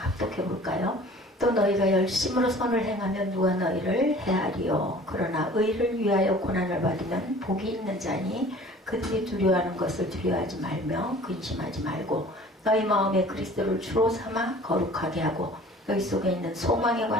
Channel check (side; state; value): both; normal; correlation 0.47